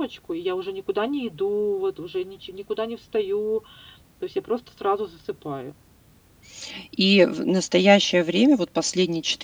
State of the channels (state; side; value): identical; both; correlation 1.00